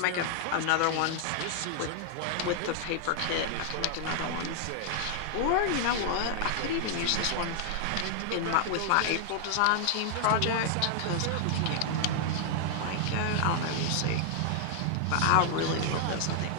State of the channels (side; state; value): both; different; correlation -0.01